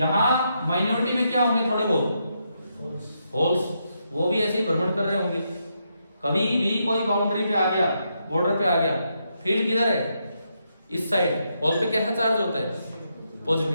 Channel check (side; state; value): both; inverted; correlation -0.81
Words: माइनॉरिटी में क्या होंगे, थोड़े बहुत होल्स, वो भी ऐसे ही भ्रमण कर रहे होंगे। कभी भी कोई बाउंड्री पे आ गया, बॉर्डर पे आ गया, फील्ड किधर है, इस साइड, होल पे कैसा चार्ज होता है,